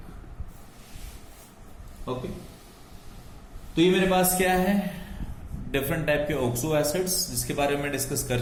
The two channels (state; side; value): identical; both; correlation 1.00